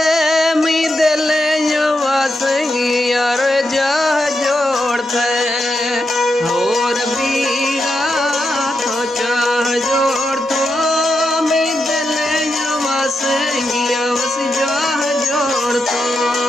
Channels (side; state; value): both; normal; correlation 0.85